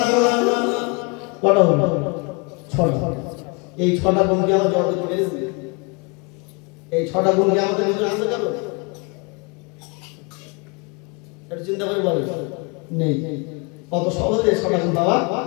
কটা হলো? 6টা। এই 6টা গুণ কি আমরা জগতে পেরেছি? এই 6টা গুণ কি আমাদের ভিতরে আছে কারো? এটা চিন্তা করে বলেন। নেই, কত সহজে 6টা গুণ পাওয়া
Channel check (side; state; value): right; quieter; 30.8 dB